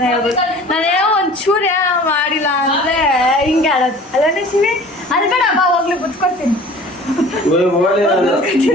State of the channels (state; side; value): normal; both; correlation 0.45